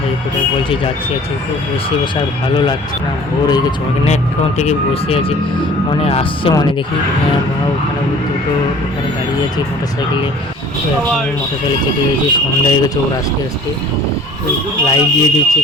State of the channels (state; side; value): normal; both; correlation 0.49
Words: কোথায় বলছি যাচ্ছি আছি, তো বসে আর ভালো লাগছে না, বোর হয়ে গেছে অনেকক্ষণ থেকে বসে আছি। মনে আসছে মনে দেখি ওখানে দুটো ওখানে দাঁড়িয়ে আছে মোটর সাইকেলে, তো এখন মোটর সাইকেলে চেপে গেছি, সন্ধ্যা হয়ে গেছে। ওর আস্তে আস্তে লাইট দিয়ে দিচ্ছে,